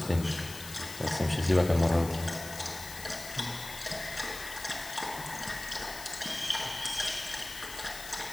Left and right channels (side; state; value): left; noise; hiss, 11 dB below the sound